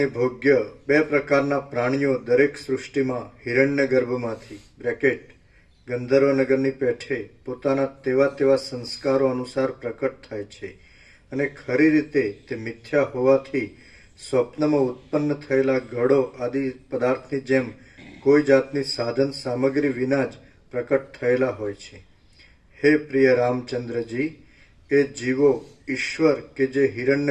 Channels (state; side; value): identical; both; correlation 1.00